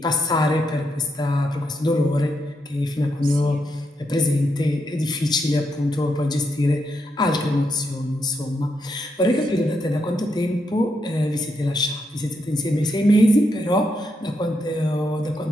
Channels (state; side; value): normal; both; correlation 0.81